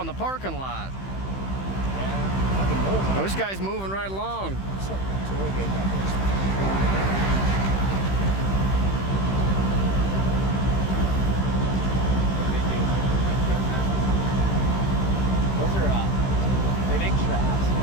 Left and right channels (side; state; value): right; late; 15 ms